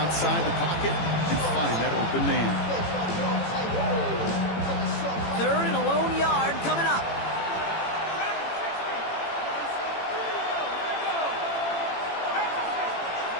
the pocket and find that open man. 3rd and a lone yard coming up.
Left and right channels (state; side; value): late; right; 18 ms